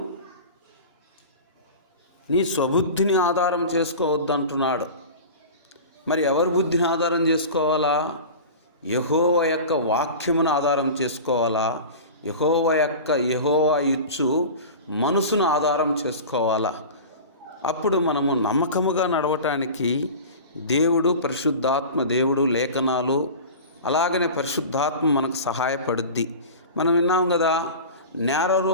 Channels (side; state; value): both; inverted; correlation -0.33